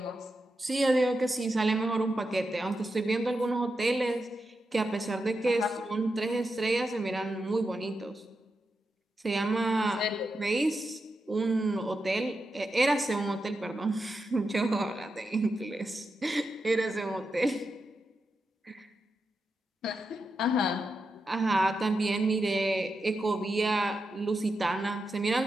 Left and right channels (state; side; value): normal; both; correlation 0.88